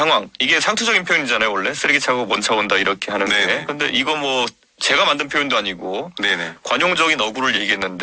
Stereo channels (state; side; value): identical; both; correlation 1.00